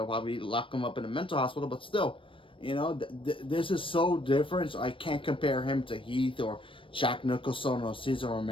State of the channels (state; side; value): late; right; 0.25 ms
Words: lock him up in a mental hospital, but still, this is so different. So I can't compare him to Heath or Jack Nicholson or Cesar